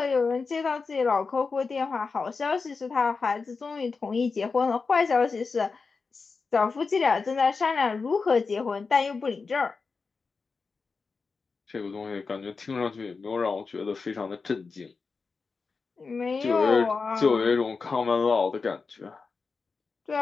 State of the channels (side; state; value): right; quieter; 4.6 dB